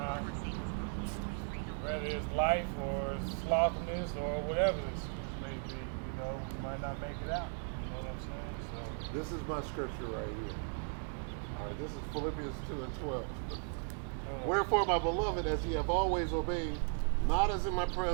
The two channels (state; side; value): silent; left; 53 dB below the other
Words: whether it's life or sloppiness or whatever the excuse may be, you know, we might not make it out. You know what I'm saying? So This is my scripture right here. All right, this is Philippians 2 and 12. Wherefore, my beloved, as ye have always obeyed, not as in my